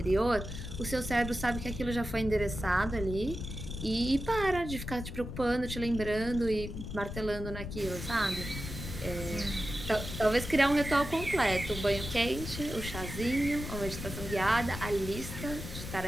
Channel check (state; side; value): noise; left; rumble, 7 dB below the sound